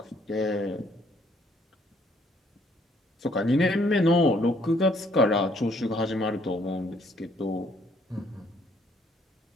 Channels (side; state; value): both; normal; correlation 0.66